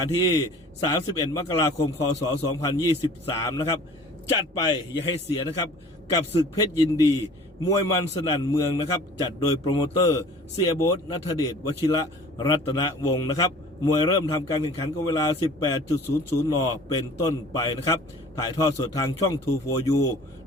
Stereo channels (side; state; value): both; normal; correlation 0.47